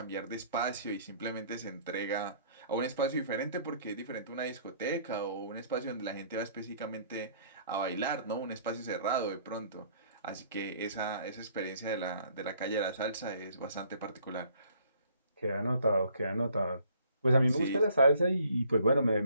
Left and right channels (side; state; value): both; inverted; correlation -0.60